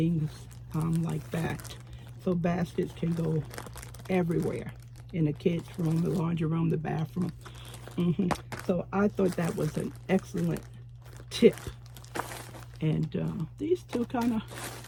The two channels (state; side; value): identical; both; correlation 1.00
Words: like that. So baskets can go everywhere, in the kids' room, the laundry room, the bathroom. So I thought that was an excellent tip. And these two kind of,